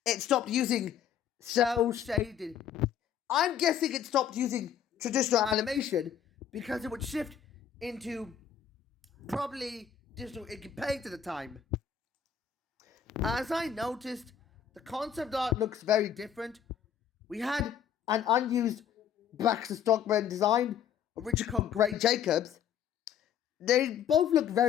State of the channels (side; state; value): right; quieter; 8.8 dB